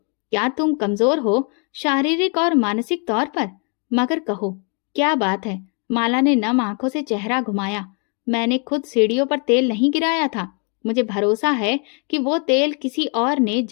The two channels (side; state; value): right; quieter; 37.3 dB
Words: क्या तुम कमजोर हो शारीरिक और मानसिक तौर पर? मगर कहो, क्या बात है? माला ने नम आंखों से चेहरा घुमाया। मैंने खुद सीढ़ियों पर तेल नहीं गिराया था, मुझे भरोसा है कि वो तेल किसी और ने